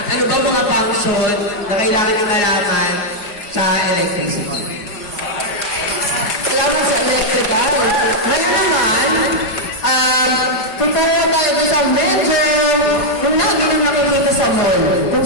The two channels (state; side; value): late; right; 4.8 ms